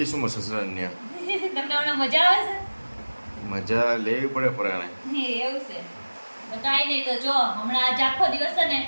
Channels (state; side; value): inverted; both; correlation -1.00